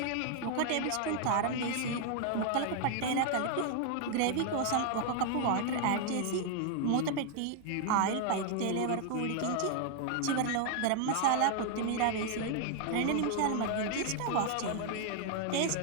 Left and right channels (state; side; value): different; both; correlation 0.00